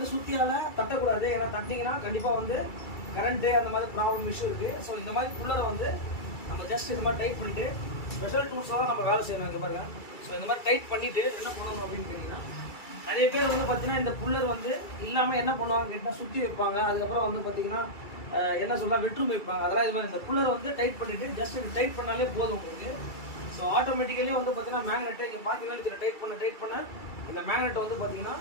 சுற்றியால் தட்டக்கூடாது. ஏன்னா தட்டிங்கன்னா கண்டிப்பாக வந்து கரண்ட்டு அந்த மாதிரி ப்ராப்ளம் இஷ்யூ இருக்குது. ஸோ இந்த மாதிரி புல்லரை வந்து நம்ம ஜஸ்ட் இந்த மாதிரி டைட் பண்ணிவிட்டு ஸ்பெஷல் டூல்ஸாக தான் நம்ம வேலை செய்யணும். இங்கே பாருங்கள். ஸோ இந்த மாதிரி டைட் பண்ணிவிட்டு என்ன பண்ணணும் அப்படின்னு கேட்டிங்கன்னா நிறைய பேர் வந்து பார்த்தீங்கன்னா இந்த புல்லர் வந்து இல்லாமல் என்ன பண்ணுவாங்க கேட்டால் சுற்றி வைப்பாங்க. அதுக்கப்புறம் வந்து பார்த்தீங்கன்னா என்ன சொல்லலாம் வெட்ரூம் வைப்பாங்க. அதெல்லாம் இது மாதிரி இந்த புல்லரை வந்து டைட் பண்ணிவிட்டு ஜஸ்ட் இது டைட் பண்ணாலே போதும் உங்களுக்கு. ஸோ ஆட்டோமேட்டிக்கலி வந்து பார்த்தீங்கன்னா மேக்னெட்டை இங்கே பார்த்தீங்கன்னா இதில் டைட் பண்ண இந்த மேக்னெட் வந்து பார்த்தீங்கன்னா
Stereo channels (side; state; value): right; late; 2.3 ms